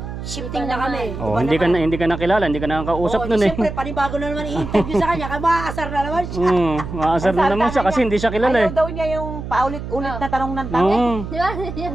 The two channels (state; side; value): noise; right; hum, 8 dB below the sound